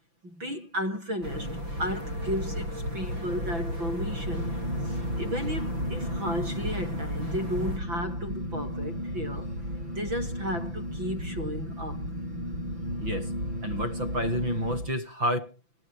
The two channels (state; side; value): late; left; 5.9 ms